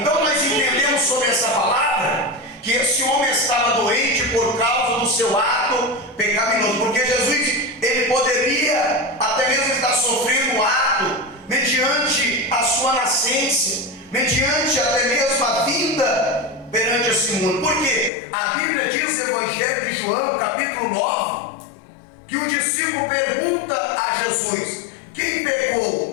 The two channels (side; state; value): right; drops out; at 18.1 s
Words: nós entendemos sobre essa palavra que esse homem estava doente por causa do seu ato pecaminoso, porque Jesus, ele poderia até mesmo estar sofrendo um ato mediante a sua nascença, mediante até mesmo a vinda perante esse mundo. Porque a Bíblia diz no Evangelho de João, capítulo 9, que o discípulo pergunta a Jesus: quem